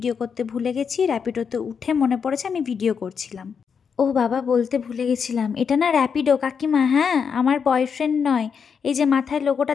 করতে ভুলে গেছি, র্যাপিডোতে উঠে মনে পড়েছে আমি ভিডিও করছিলাম। ও বাবা, বলতে ভুলে গেছিলাম, এটা না র্যাপিডো কাকিমা, হ্যাঁ আমার বয়ফ্রেন্ড নয়। এই যে মাথায় লোগোটা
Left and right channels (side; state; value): right; quieter; 6.5 dB